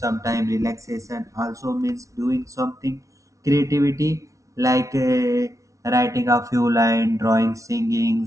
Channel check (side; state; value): left; late; 0.15 ms